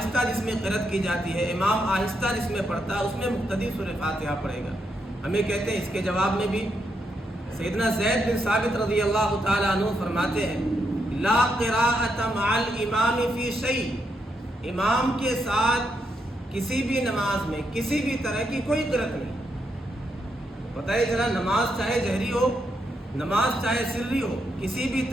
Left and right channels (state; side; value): normal; both; correlation 0.80